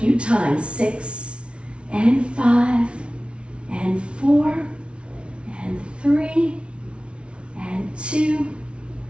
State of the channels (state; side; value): late; left; 0.059 ms